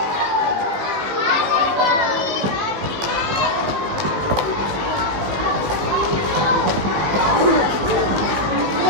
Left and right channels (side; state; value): left; late; 17 ms